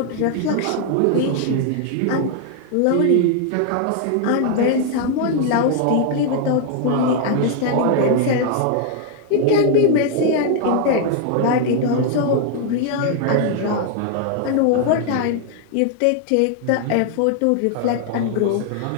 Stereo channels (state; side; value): different; both; correlation 0.00